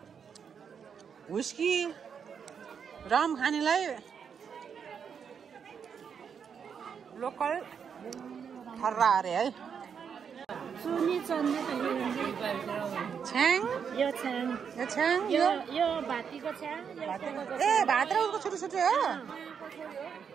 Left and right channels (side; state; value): left; quieter; 7.0 dB